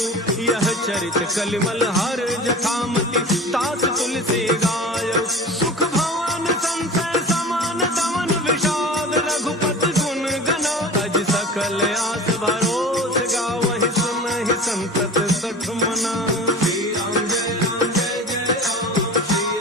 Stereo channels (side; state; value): both; normal; correlation 0.36